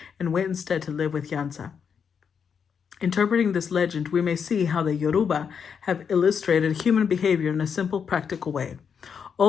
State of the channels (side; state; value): right; quieter; 6.8 dB